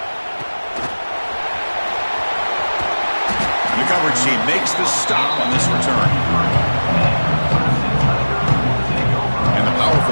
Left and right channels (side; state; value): both; inverted; correlation -1.00